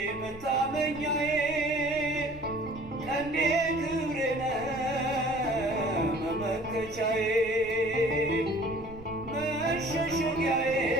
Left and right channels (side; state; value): right; noise; rumble, 19 dB below the sound